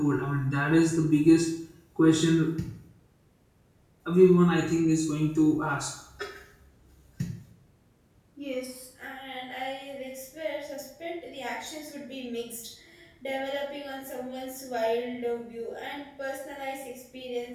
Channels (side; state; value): both; identical; correlation 1.00